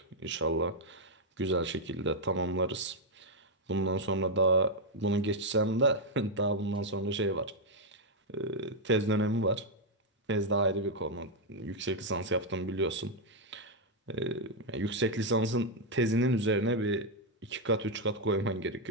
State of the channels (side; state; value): both; normal; correlation 0.00